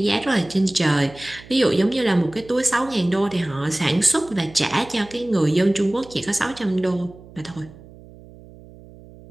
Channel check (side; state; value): right; noise; hum, 21 dB below the sound